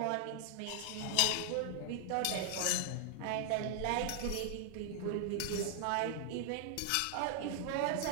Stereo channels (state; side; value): different; both; correlation 0.00